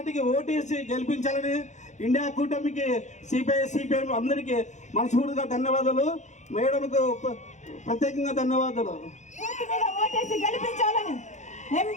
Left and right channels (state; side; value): late; right; 0.34 ms